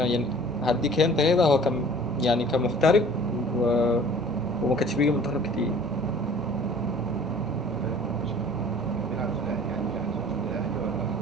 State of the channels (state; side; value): normal; both; correlation 0.48